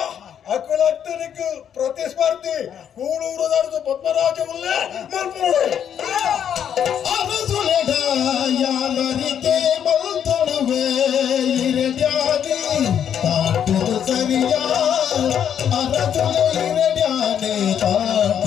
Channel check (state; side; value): quieter; right; 8.9 dB